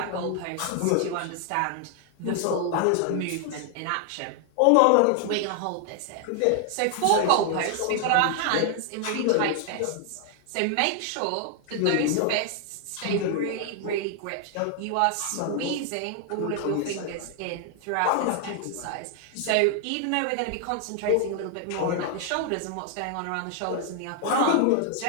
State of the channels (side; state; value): both; different; correlation 0.00